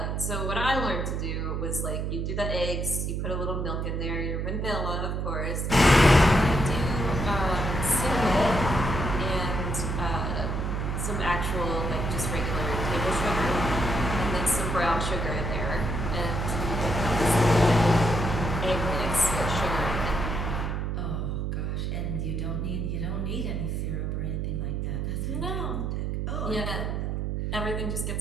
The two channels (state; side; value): noise; right; hum, 1 dB below the sound